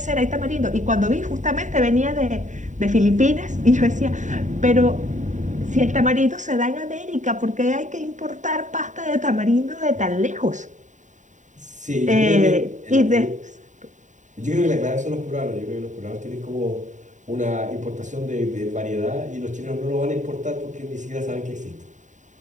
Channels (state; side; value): late; left; 0.36 ms